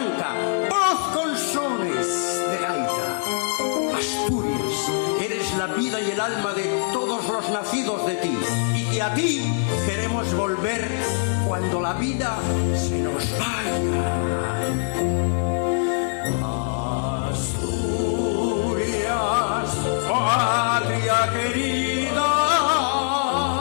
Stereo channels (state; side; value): silent; right; digital silence